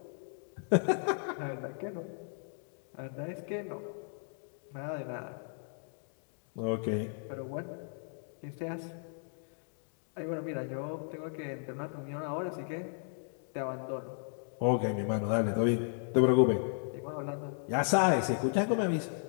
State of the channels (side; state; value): right; silent; 54 dB below the other